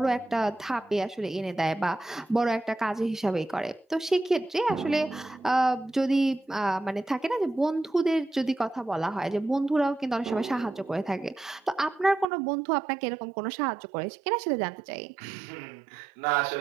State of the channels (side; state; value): left; drops out; at 12.2 s